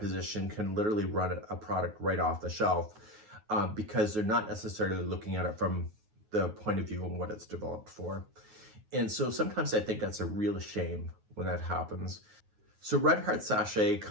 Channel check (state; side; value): late; left; 9.4 ms